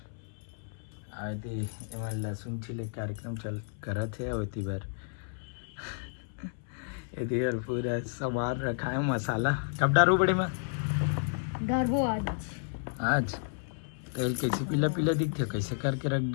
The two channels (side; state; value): right; silent; 57 dB below the other